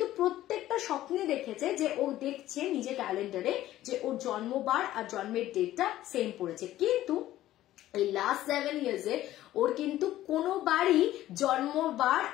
প্রত্যেকটা স্বপ্নে দেখেছে যে ও দেখছে নিজের ক্যালেন্ডারে যে ওর জন্মবার আর জন্মের ডেটটা সেম পড়েছে, কিন্তু এই লাস্ট 7 ইয়ার্সে ওর কিন্তু কোনোবারই জন্মবার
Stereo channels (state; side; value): quieter; right; 14.2 dB